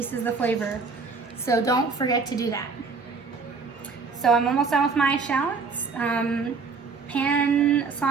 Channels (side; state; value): left; quieter; 4.7 dB